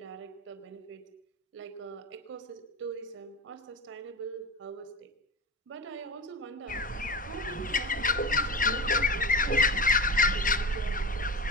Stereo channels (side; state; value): both; normal; correlation 0.26